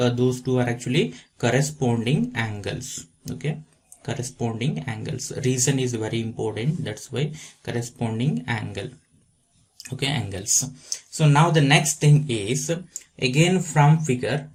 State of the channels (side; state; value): both; identical; correlation 1.00